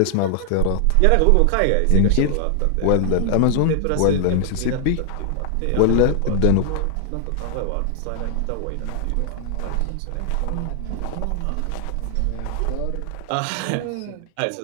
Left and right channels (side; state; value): both; different; correlation 0.00